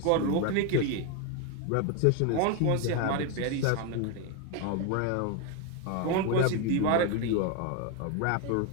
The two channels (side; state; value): both; different; correlation 0.01